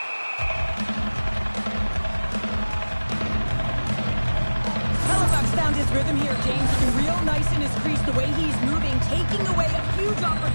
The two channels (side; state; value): both; inverted; correlation -1.00